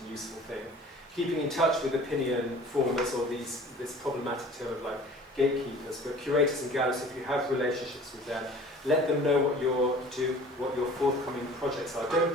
and useful thing. Keeping in touch with opinion formers, or this problematic term of like gatekeepers, but curators and galleries, if you have relationships with them, let them know what your forthcoming projects are. Don't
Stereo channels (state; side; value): normal; both; correlation 0.46